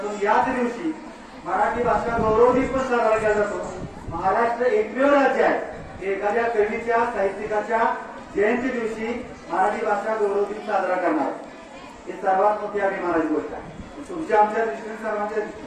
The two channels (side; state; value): both; identical; correlation 1.00